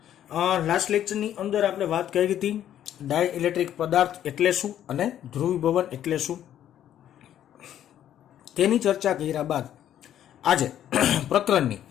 લાસ્ટ લેક્ચરની અંદર આપણે વાત કરી હતી ડાયઇલેક્ટ્રિક પદાર્થ એટલે શું અને ધ્રુવીભવન એટલે શું, તેની ચર્ચા કર્યા બાદ આજે પ્રકરણની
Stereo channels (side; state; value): right; quieter; 11.0 dB